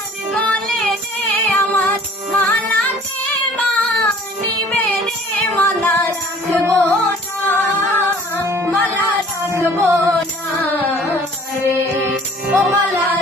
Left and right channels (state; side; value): normal; both; correlation 0.52